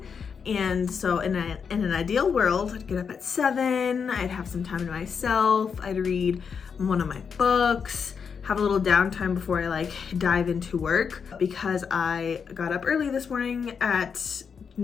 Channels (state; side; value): quieter; right; 6.3 dB